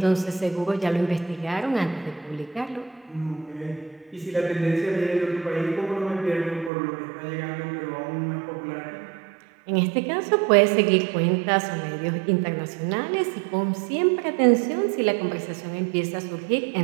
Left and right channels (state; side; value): drops out; left; at 6.7 s